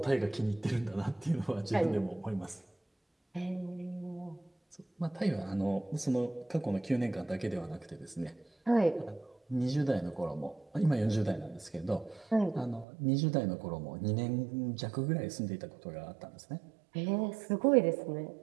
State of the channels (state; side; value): drops out; left; at 12.9 s